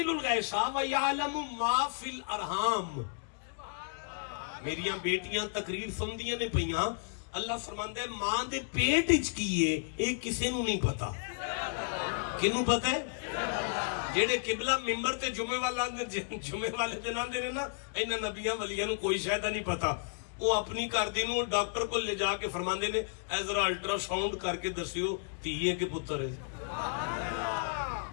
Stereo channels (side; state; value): right; silent; digital silence